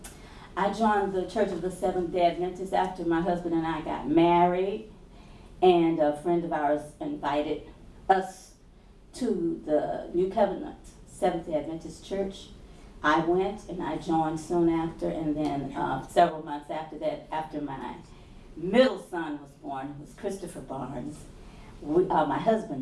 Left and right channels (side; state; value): both; identical; correlation 1.00